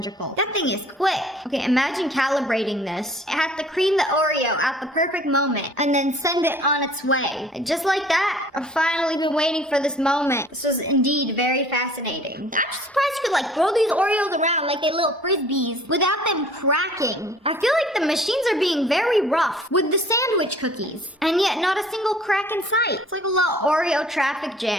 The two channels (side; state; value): both; normal; correlation 0.52